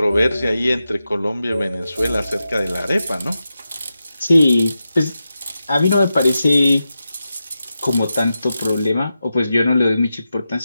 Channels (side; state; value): both; inverted; correlation -0.90